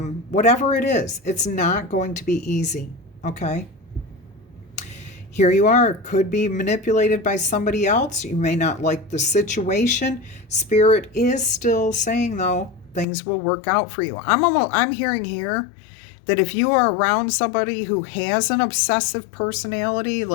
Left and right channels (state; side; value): drops out; right; at 13.1 s